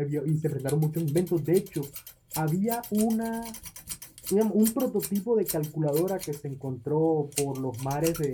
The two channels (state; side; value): identical; both; correlation 1.00